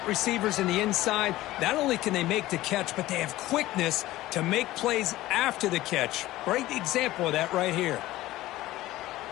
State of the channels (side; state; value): right; quieter; 16.5 dB